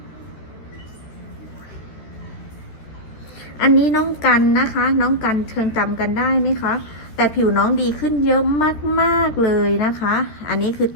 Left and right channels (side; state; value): right; late; 13 ms